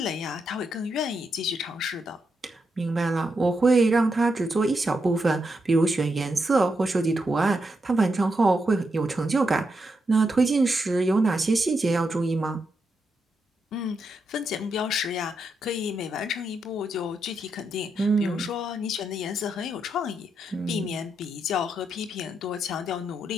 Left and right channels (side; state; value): both; normal; correlation 0.83